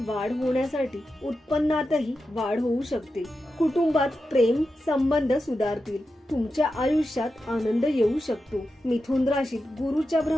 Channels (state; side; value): normal; both; correlation 0.90